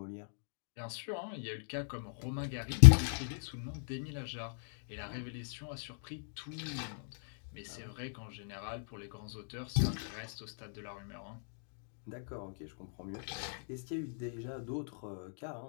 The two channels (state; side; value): silent; right; digital silence